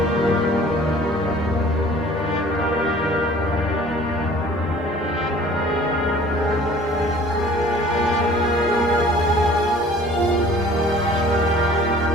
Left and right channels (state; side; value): normal; both; correlation 0.50